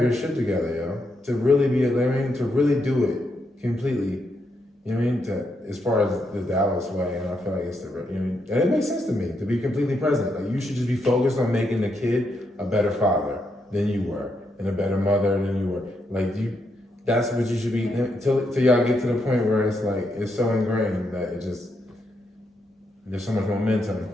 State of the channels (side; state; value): both; normal; correlation 0.80